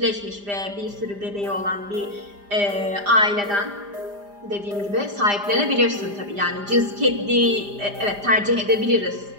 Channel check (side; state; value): left; late; 5.0 ms